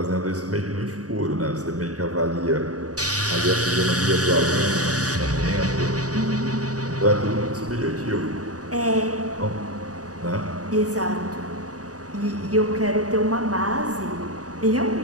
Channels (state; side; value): late; left; 0.67 ms